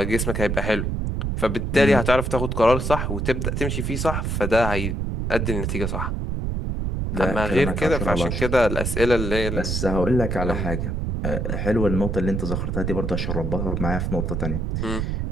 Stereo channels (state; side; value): noise; right; rumble, 1 dB below the sound